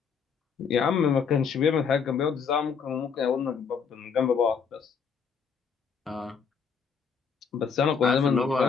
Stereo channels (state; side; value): quieter; right; 6.2 dB